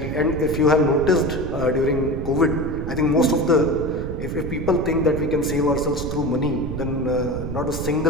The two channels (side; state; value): right; noise; rumble, 6 dB below the sound